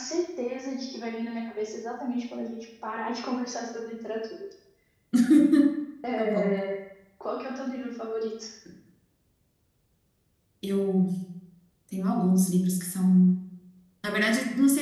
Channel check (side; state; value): both; identical; correlation 1.00